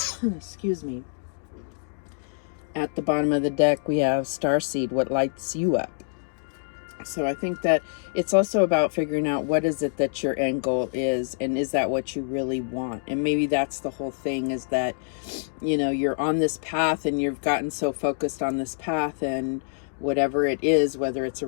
Excuse me. At the bottom of the deck, we have Starseed, what lights you up. So I think that it's also about figuring out what is it that your end goal is, and is that what you really want? And maybe that's the whole thing, is that, you're on this path and you've gotten so focused on this path, and whatever it is, whether it's a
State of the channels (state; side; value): silent; right; digital silence